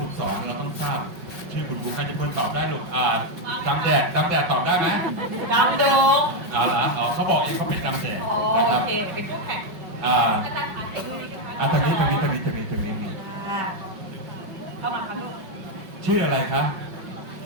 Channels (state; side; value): late; left; 5.7 ms